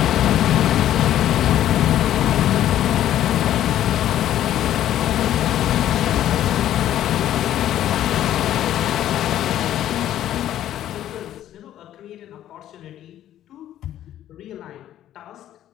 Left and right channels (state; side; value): quieter; right; 12.0 dB